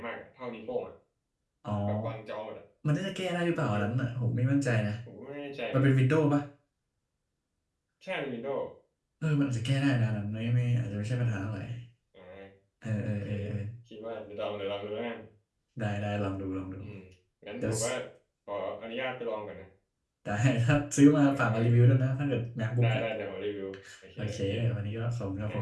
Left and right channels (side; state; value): both; identical; correlation 1.00